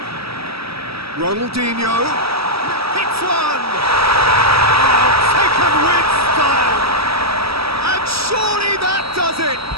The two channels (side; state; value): left; late; 0.76 ms